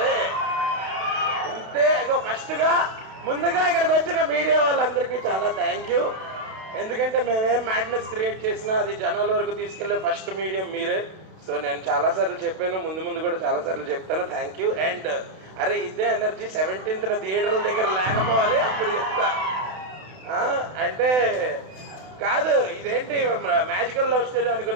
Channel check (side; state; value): left; late; 32 ms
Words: ఇంతే ఇగో ఫస్ట్గా ముందుగా ఇక్కడికి వచ్చిన మీడియా వాళ్ళందరికీ చాలా థ్యాంక్ యూ. ఎందుకంటే మేమేం మ్యాడ్నెస్ క్రియేట్ చేసినా అది జనాల వరకు తీసుకెళ్లే ఫస్ట్ మీడియం మీరే. సో నేను చాలాసార్లు చెప్పాను, ముందు కూడా చాలాసార్లు చెప్తాను. Thank you. అండ్ అరే ఇదే ఎనర్జీ 17th థియేటర్ల దగ్గర లేకపోవాలి, అప్పుడు చెప్తా. అంటే కాదు, ఇదేంటి మ్యాజికల్ లవ్ స్టోరీ